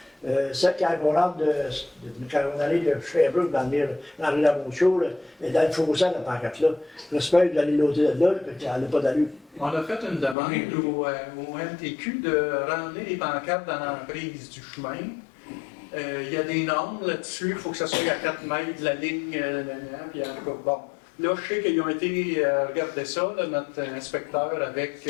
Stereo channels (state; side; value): drops out; right; at 10.4 s